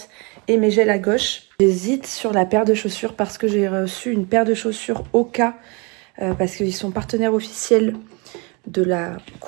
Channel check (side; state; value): left; quieter; 30.3 dB